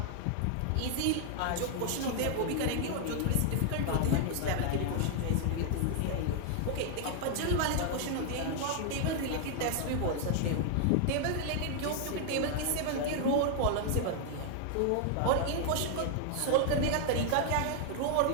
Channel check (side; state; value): both; different; correlation 0.00